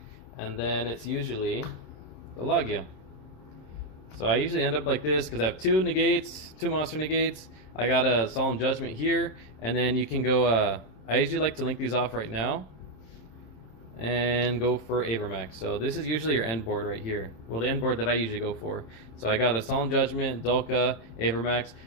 and then it's usually the Logia. So I usually end up like this because I have two monster negates. I got a Solemn Judgment here, and then you can go. I usually like to link these off right now and go for Avermax. So this is usually your end board right here. Well, the end board that I usually go for. So I got a Solemn Judgment, Dolka, Avermax.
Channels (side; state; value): right; late; 26 ms